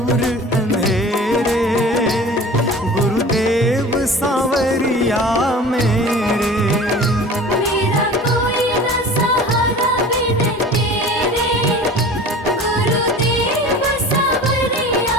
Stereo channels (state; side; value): normal; both; correlation 0.40